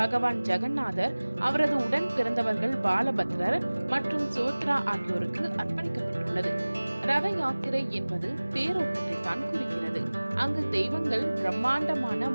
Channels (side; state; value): both; inverted; correlation -1.00